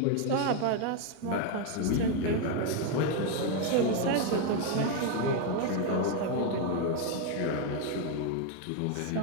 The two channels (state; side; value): different; both; correlation 0.01